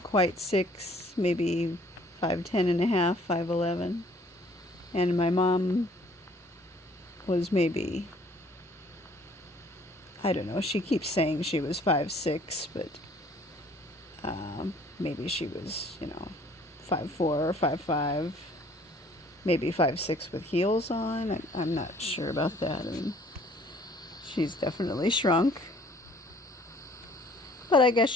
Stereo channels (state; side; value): normal; both; correlation 0.57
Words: quite 6, maybe 5'10" and a half, 5'11". And my mom was maybe, I don't know, she keeps saying she was 5'6", but maybe she was, 5'4" or 5'5", maybe 5'6" with heels on. I'm not sure about that. I mean, she's definitely shrunk. But I guess